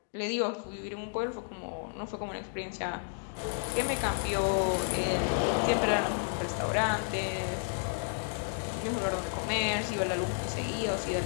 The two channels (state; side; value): silent; right; digital silence